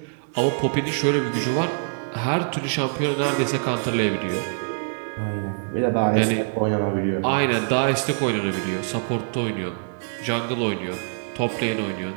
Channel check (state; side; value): silent; left; 62 dB below the other